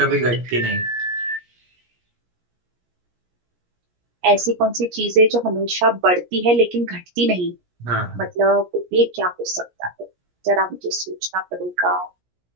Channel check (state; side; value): late; left; 17 ms